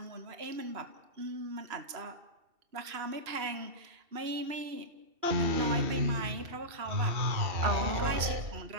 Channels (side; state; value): left; late; 2.7 ms